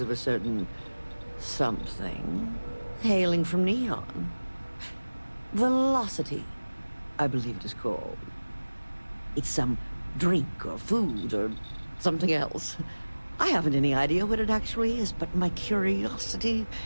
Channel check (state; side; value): inverted; both; correlation -1.00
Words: of a certain something hailing from Neon. Velocity, I believe it is called. It's some drink or food or something else. I haven't any idea what it actually is, but my curiosity